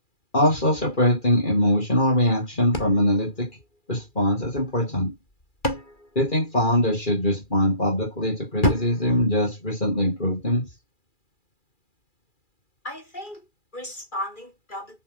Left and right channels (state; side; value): late; right; 2.4 ms